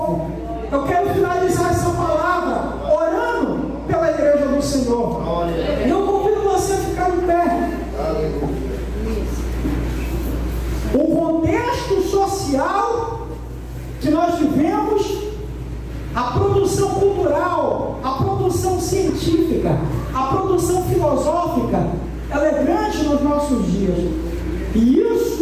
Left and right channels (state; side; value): identical; both; correlation 1.00